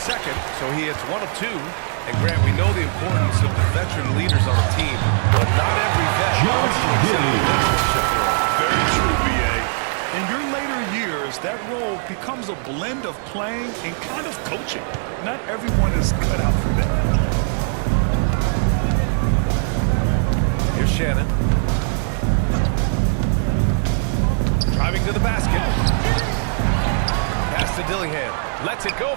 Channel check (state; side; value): silent; left; digital silence